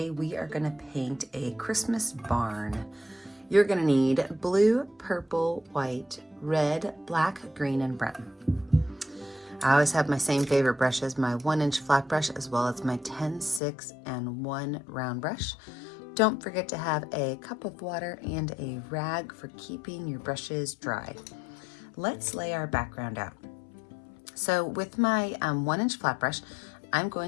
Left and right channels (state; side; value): drops out; right; at 13.6 s